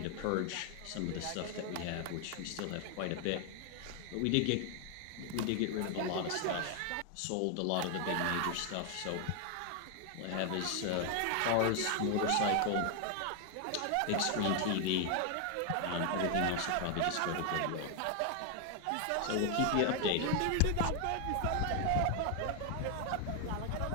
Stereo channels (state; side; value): different; both; correlation 0.00